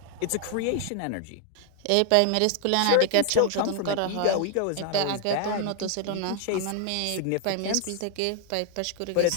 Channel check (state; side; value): different; both; correlation 0.00